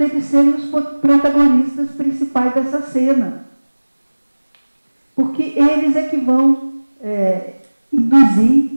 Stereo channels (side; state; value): both; inverted; correlation -1.00